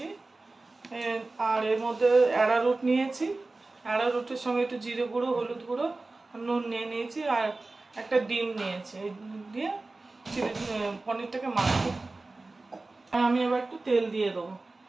আর এর মধ্যে অ্যারারুট নিয়েছি, অ্যারারুটের সঙ্গে একটু জিরে গুঁড়ো, হলুদ গুঁড়ো, নুন নিয়ে নিয়েছি আর একটা ডিম নিয়েছি। এই দিয়ে চিলি পনিরটাকে মাখবো। আমি এবার একটু তেল দিয়ে দেবো।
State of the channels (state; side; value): quieter; left; 3.3 dB